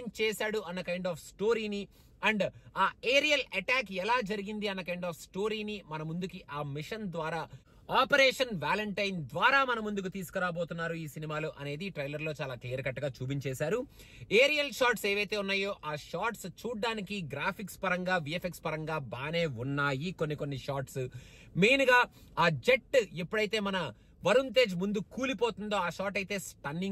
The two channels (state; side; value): identical; both; correlation 1.00